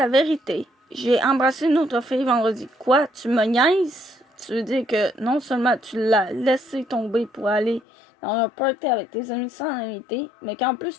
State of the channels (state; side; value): drops out; right; at 7.8 s